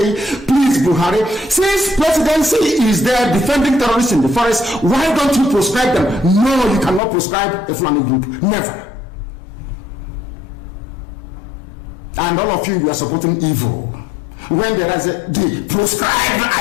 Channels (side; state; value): right; drops out; at 7.0 s